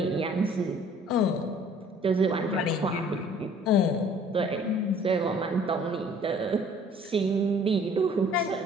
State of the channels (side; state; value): both; normal; correlation 0.54